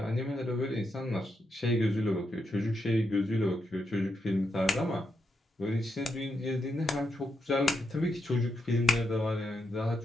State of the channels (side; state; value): both; normal; correlation 0.83